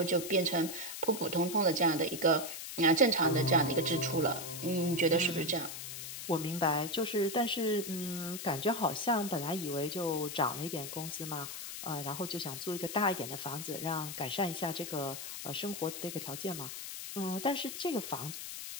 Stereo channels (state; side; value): noise; left; hiss, 8 dB below the sound